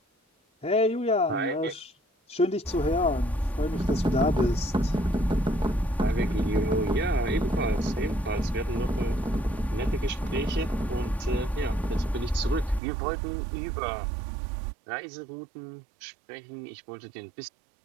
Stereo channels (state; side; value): drops out; left; at 12.8 s